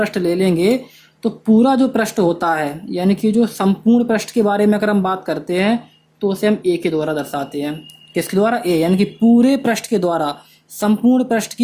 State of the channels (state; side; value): identical; both; correlation 1.00